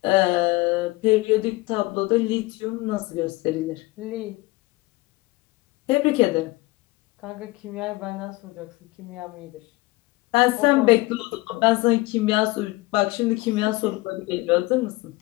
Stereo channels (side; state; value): right; quieter; 21.3 dB